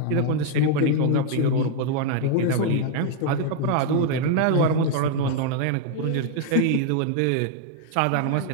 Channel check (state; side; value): different; both; correlation 0.00